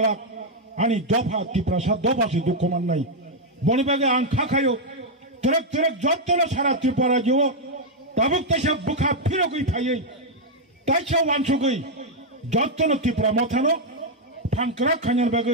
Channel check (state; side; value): normal; both; correlation -0.01